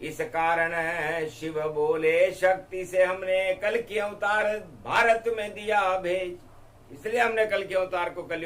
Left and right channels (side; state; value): both; identical; correlation 1.00